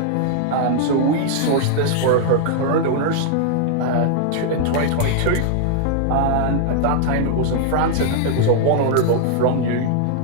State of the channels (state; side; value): different; both; correlation -0.01